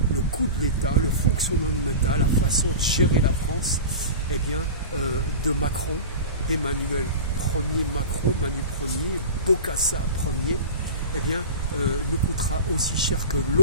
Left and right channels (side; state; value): both; inverted; correlation -0.31